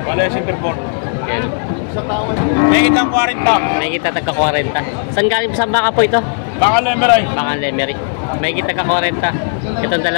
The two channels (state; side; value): silent; right; 66 dB below the other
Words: Wala yung centerboard. Yan. May kitang 40. May kita tagka 40. Saan galing sa baka po ito? Baka lemeray. Baka Lemery. May kita ka 40. Itong